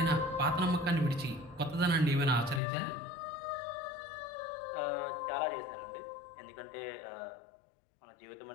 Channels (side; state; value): right; drops out; at 2.6 s